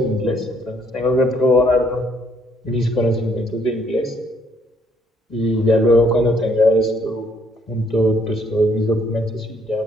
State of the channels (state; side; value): normal; both; correlation 0.68